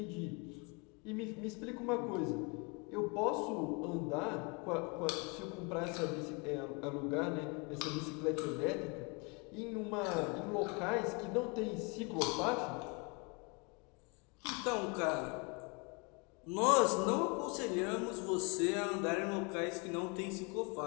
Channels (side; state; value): right; quieter; 31.2 dB